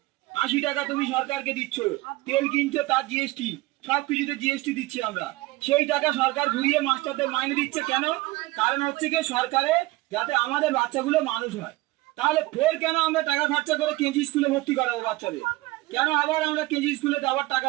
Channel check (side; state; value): left; quieter; 20.2 dB